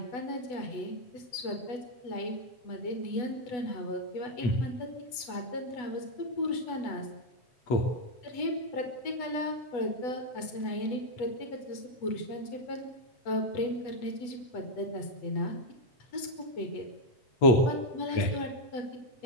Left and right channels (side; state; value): right; late; 8.1 ms